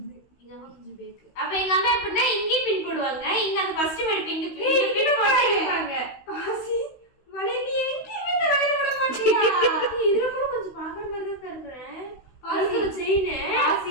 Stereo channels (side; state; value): right; late; 16 ms